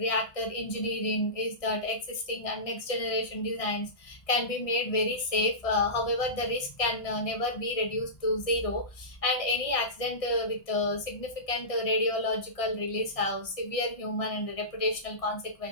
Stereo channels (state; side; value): late; right; 1.6 ms